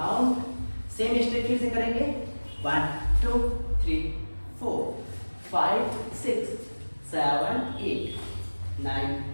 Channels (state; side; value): inverted; both; correlation -1.00